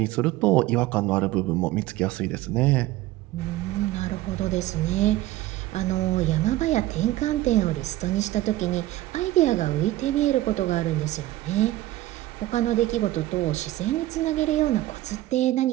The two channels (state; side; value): quieter; left; 16.1 dB